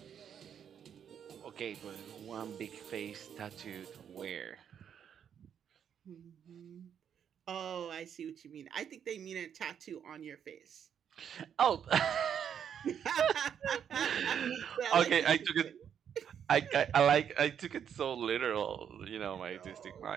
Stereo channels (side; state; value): left; quieter; 8.4 dB